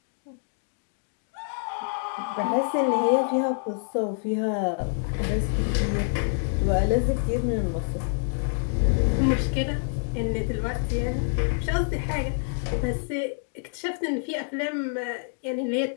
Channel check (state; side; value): silent; right; digital silence